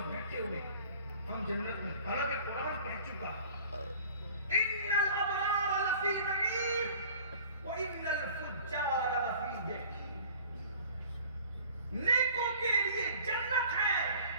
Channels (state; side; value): inverted; both; correlation -0.47